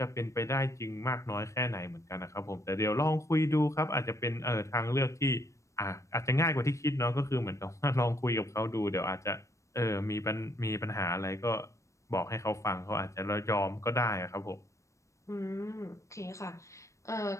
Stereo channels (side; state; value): right; late; 0.15 ms